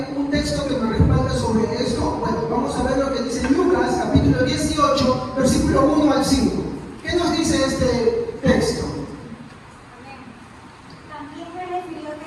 un texto que me respalda sobre esto? Bueno, vamos a ver lo que dice Lucas, capítulo 18, versículo 1 al 5. ¿Qué nos dice este texto? También le refirió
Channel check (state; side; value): identical; both; correlation 1.00